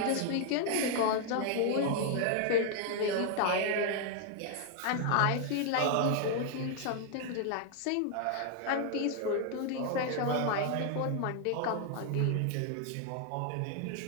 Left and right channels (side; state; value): both; different; correlation 0.00